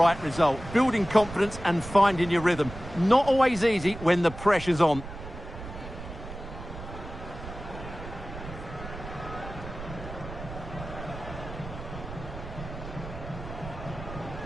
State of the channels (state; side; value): noise; right; rumble, 11 dB below the sound